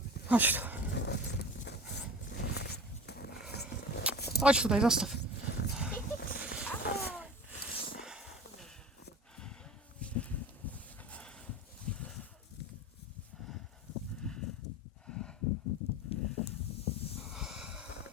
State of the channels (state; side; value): normal; both; correlation 0.36